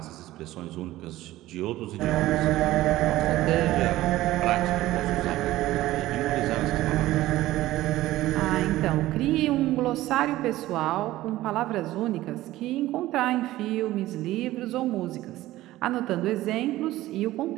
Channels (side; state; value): left; quieter; 16.1 dB